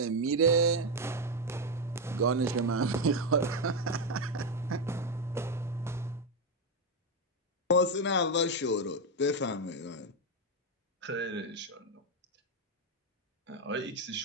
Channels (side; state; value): both; normal; correlation 0.06